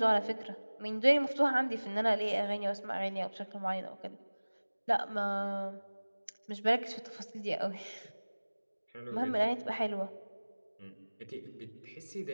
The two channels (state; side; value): inverted; both; correlation -1.00